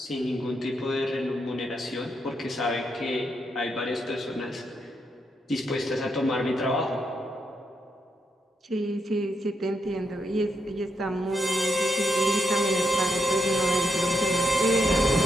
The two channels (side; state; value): both; normal; correlation 0.79